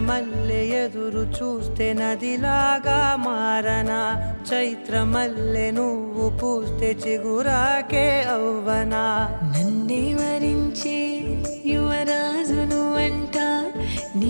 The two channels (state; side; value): inverted; both; correlation -1.00